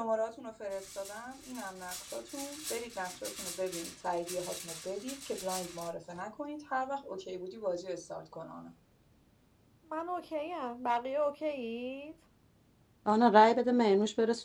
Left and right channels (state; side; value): identical; both; correlation 1.00